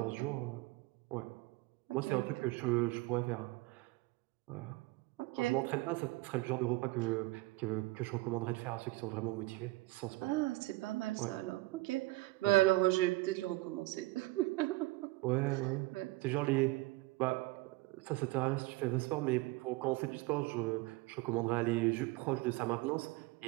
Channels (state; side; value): quieter; left; 20.9 dB